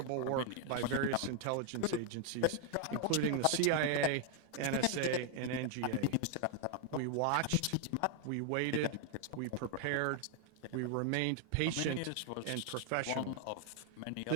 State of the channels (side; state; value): both; different; correlation 0.00